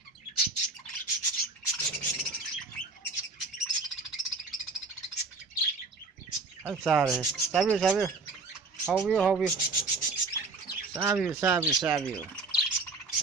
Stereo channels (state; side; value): quieter; left; 3.9 dB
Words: ꯑꯩ ꯆꯥꯔꯦ ꯆꯥꯕꯤꯌꯨ ꯆꯥꯕꯤꯌꯨ ꯍꯥꯎꯕꯤꯌꯨ ꯍꯥꯎꯕꯤꯌꯨ ꯆꯥꯕꯤꯌꯨ ꯆꯥꯕꯤꯌꯨ ꯆꯥꯕꯤꯌꯨ